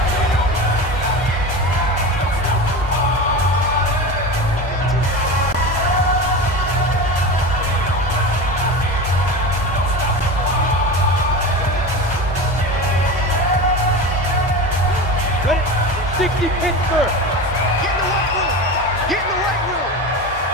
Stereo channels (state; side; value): normal; both; correlation 0.27